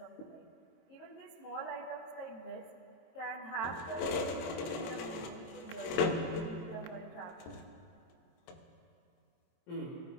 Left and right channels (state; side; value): late; right; 23 ms